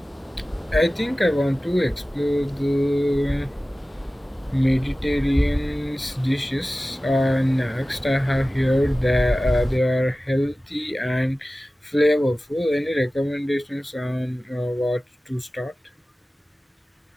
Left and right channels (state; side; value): normal; both; correlation 0.96